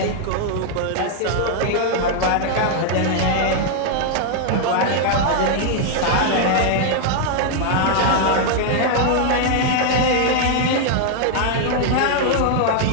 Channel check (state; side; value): different; both; correlation 0.00